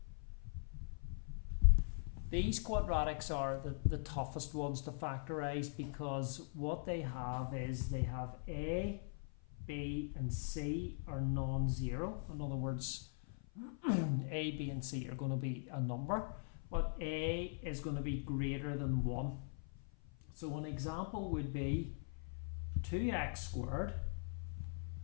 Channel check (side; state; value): right; silent; 50 dB below the other